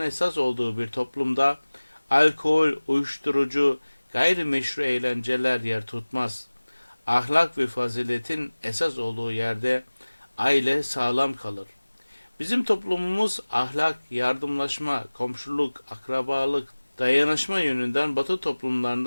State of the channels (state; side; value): inverted; both; correlation -1.00